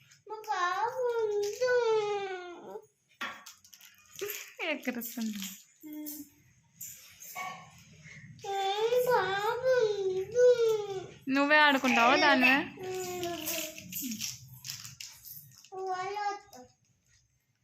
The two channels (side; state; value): both; identical; correlation 1.00